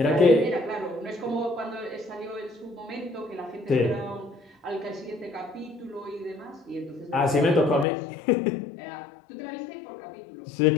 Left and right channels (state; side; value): drops out; right; at 7.9 s